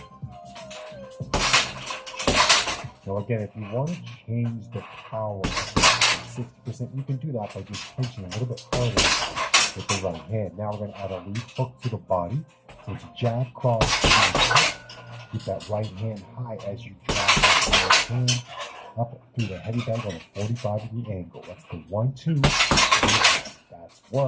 Now again, if you want to change the power to 60%, you can do that by just punching a little bit harder with the right hand. Now we're going to add a lead hook to the body. So it's a jab, cross, keep that right hand high as you drive that left hand up through the heavy bag on a 45-degree angle. That's the 1, 2. That's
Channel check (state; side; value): identical; both; correlation 1.00